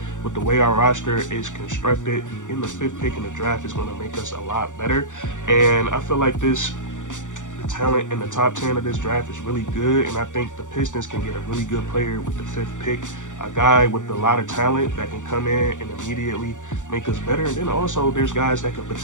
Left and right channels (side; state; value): right; late; 0.86 ms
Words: the way our roster is constructed. In the 5th pick in the draft is going to make us a lot better, and I feel like the talent in the top 10 of this draft is really good, and I think the Pistons can get a really good player with the 5th pick, a guy with a lot of talent that can come in and immediately make us better. And then also there's guys that could